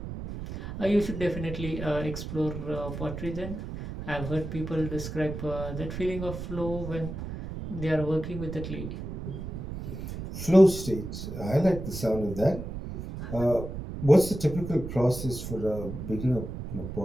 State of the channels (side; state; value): right; noise; rumble, 7 dB below the sound